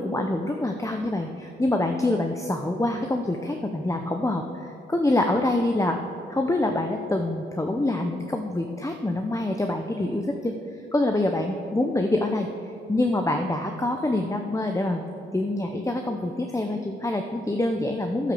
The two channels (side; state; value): both; normal; correlation 0.80